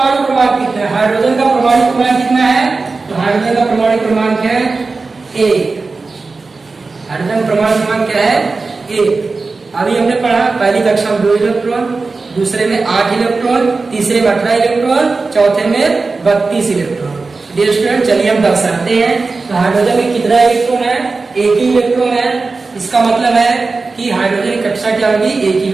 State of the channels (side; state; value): left; quieter; 4.0 dB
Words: क्रमांक कितना है। हाइड्रोजन का परमाणु क्रमांक कितना है? तो हाइड्रोजन का परमाणु क्रमांक है 1। हाइड्रोजन परमाणु क्रमांक क्या है? 1। अभी हमने पढ़ा पहली कक्षा में 2 इलेक्ट्रॉन, दूसरे में 8 इलेक्ट्रॉन, तीसरे में 18 इलेक्ट्रॉन, चौथे में 32 इलेक्ट्रॉन। डियर स्टूडेंट, चलिए हम दर्शाते हैं। तो हाइड्रोजन में कितना इलेक्ट्रॉन है? 1 ही इलेक्ट्रॉन है। इसका मतलब है कि हाइड्रोजन की कक्षा क्या होगी? 1 ही